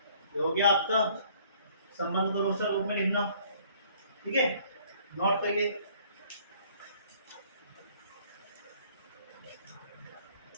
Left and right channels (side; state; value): both; inverted; correlation -0.59